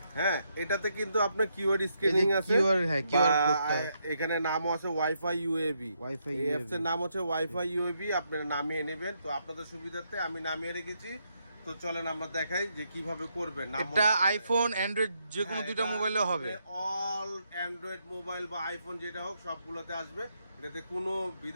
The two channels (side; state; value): both; inverted; correlation -0.78